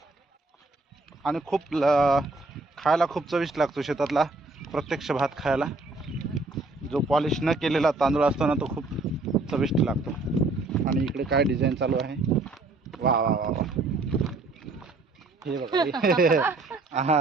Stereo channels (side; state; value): left; quieter; 3.3 dB